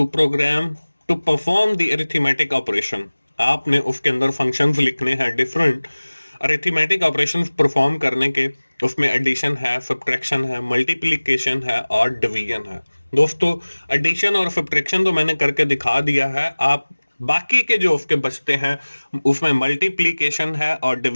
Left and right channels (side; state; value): both; inverted; correlation -1.00